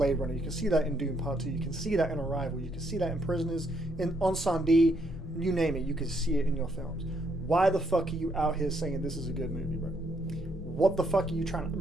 Runner. You can see that in Dune Part 2. You can see that in Arrival. You can see that in Prisoners, in Ensandie, you name it. You can see it in your films. Why the fuck are you out here saying this is a good movie, bro? What the fuck are you trying to...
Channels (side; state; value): both; normal; correlation 0.73